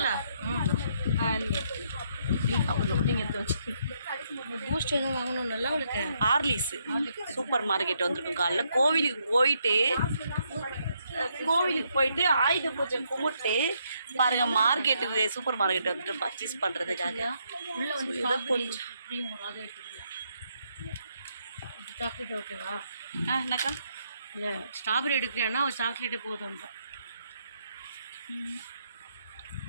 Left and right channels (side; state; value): both; inverted; correlation -0.75